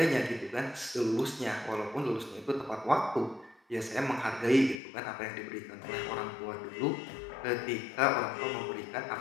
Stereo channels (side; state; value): right; drops out; at 4.8 s